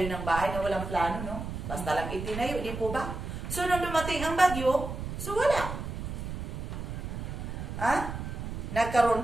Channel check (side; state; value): right; noise; rumble, 6 dB below the sound